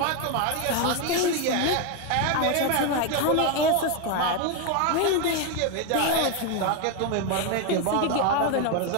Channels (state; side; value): different; both; correlation 0.01